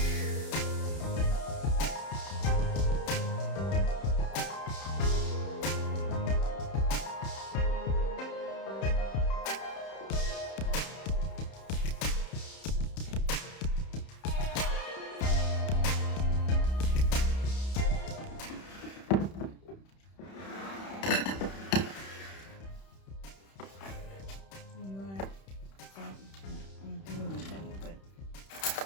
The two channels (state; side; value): late; right; 31 ms